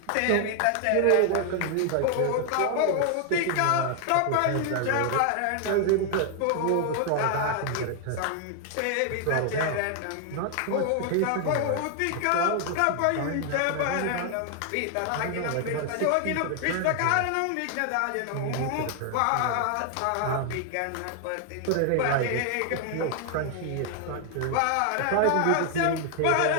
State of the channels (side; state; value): both; different; correlation 0.00